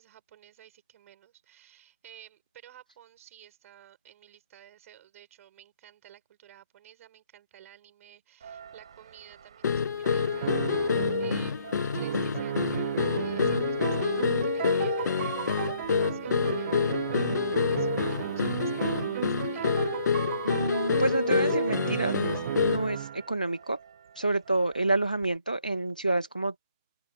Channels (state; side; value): inverted; both; correlation -0.66